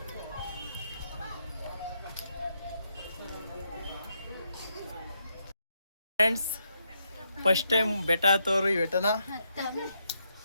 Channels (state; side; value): inverted; both; correlation -0.80